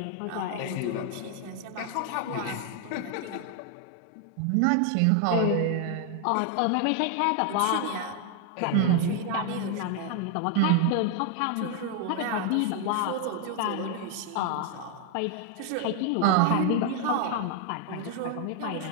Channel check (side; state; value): both; different; correlation 0.00